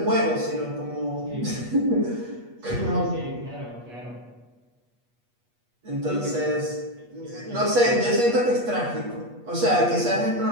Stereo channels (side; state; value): left; late; 8.3 ms